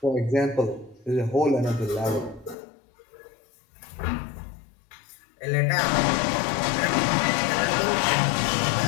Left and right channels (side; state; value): right; drops out; at 2.6 s